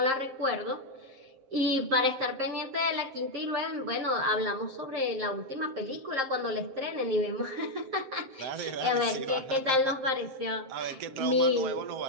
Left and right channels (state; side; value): late; left; 7.5 ms